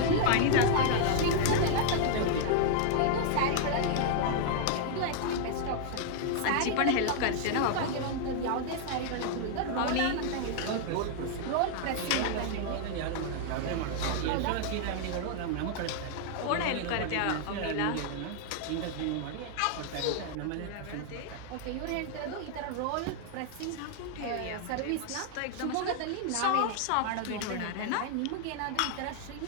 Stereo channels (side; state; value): both; different; correlation 0.00